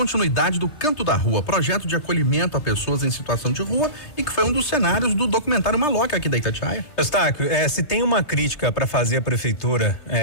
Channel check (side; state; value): right; late; 3.3 ms